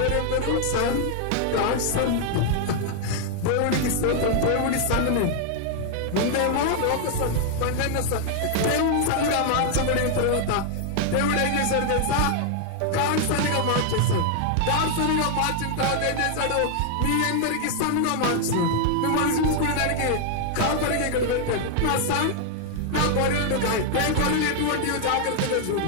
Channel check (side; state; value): both; different; correlation 0.00